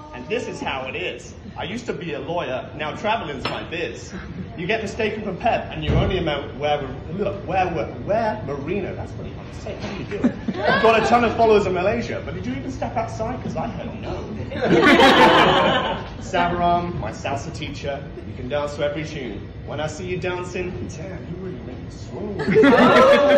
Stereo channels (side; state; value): both; identical; correlation 1.00